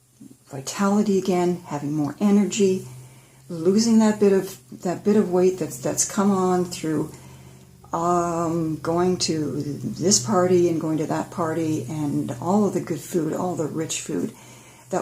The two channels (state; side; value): identical; both; correlation 1.00